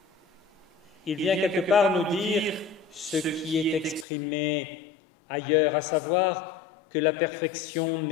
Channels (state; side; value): drops out; right; at 4.0 s